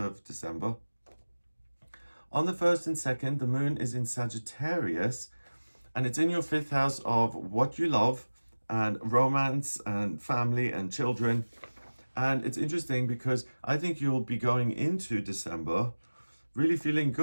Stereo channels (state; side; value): inverted; both; correlation -1.00